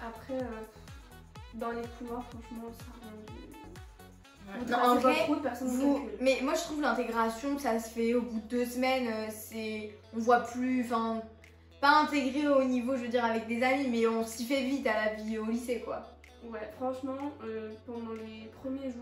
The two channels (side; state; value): both; identical; correlation 1.00